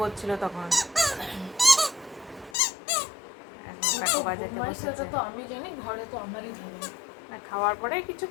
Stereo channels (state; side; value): drops out; right; at 2.6 s